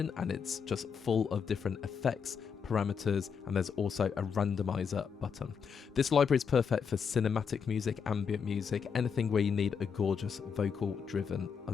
and it's just full of different effects, parameters, and there's also a randomizer button. This library is perfect for cinematic music, ambient music, anything where you need a gorgeous vocal driven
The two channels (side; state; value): right; quieter; 6.4 dB